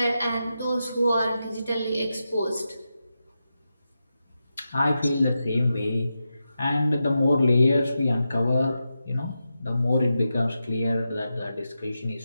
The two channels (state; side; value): inverted; both; correlation -0.89